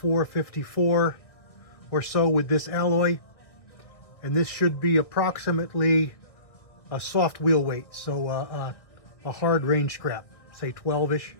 or so with this alloy, and this should be approximately a soft wheel weight, so a hard range scrap, say 12-ish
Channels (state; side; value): late; right; 1.8 ms